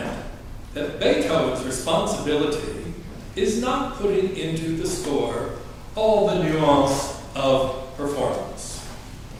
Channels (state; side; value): identical; both; correlation 1.00